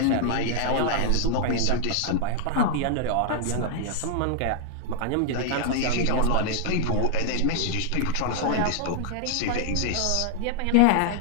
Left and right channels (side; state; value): both; different; correlation 0.00